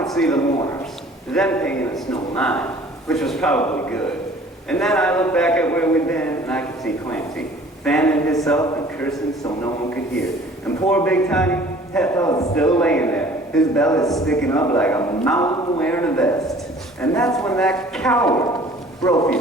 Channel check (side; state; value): both; normal; correlation 0.50